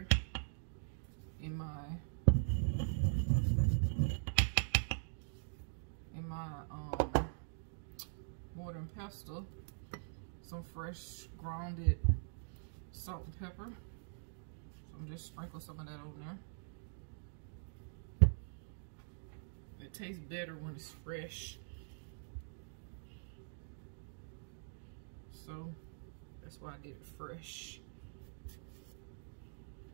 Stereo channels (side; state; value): left; silent; digital silence